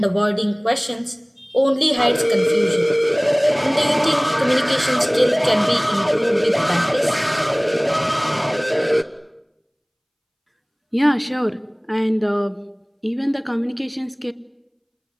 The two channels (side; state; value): both; identical; correlation 1.00